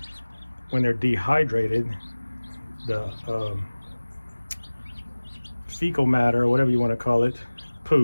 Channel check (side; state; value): both; inverted; correlation -1.00